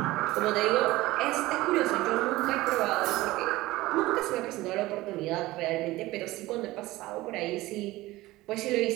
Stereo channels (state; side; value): quieter; left; 18.3 dB